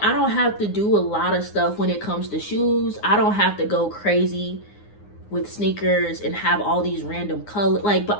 I don't have to do a lot of stuff when it comes to shoes. I don't have to go crazy with sneakers and have all these random colors, like,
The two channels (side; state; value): right; late; 9.7 ms